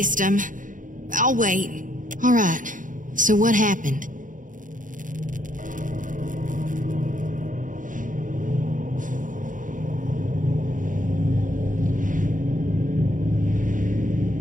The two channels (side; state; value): left; late; 0.38 ms